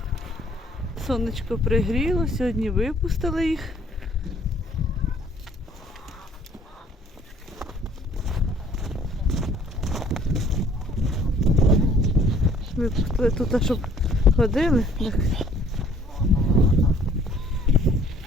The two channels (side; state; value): both; normal; correlation 0.57